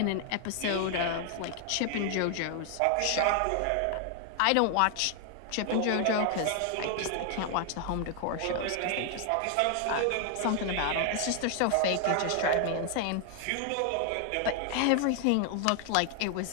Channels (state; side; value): different; both; correlation 0.00